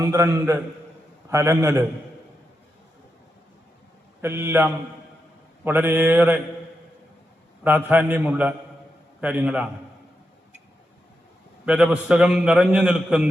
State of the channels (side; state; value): both; normal; correlation 0.86